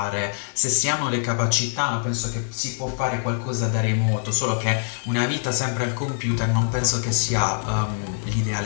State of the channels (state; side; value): silent; right; 63 dB below the other